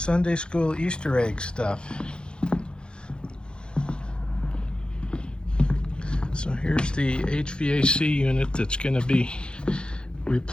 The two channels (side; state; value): right; late; 0.051 ms